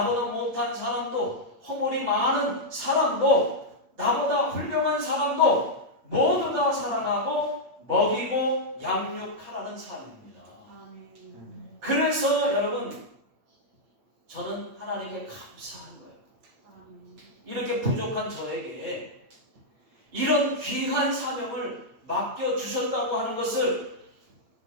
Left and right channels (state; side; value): late; left; 8.6 ms